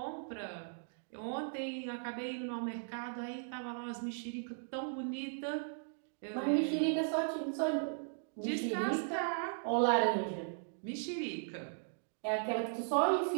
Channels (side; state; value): left; silent; digital silence